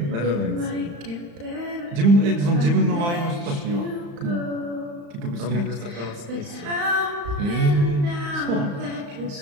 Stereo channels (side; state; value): left; late; 35 ms